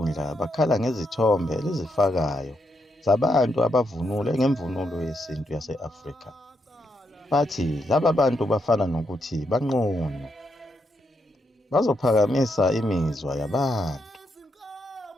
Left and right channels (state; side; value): normal; both; correlation 0.80